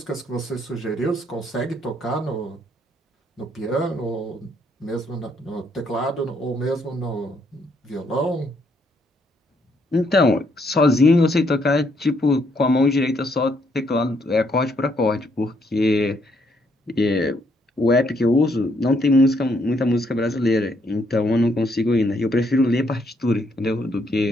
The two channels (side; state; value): both; normal; correlation 0.72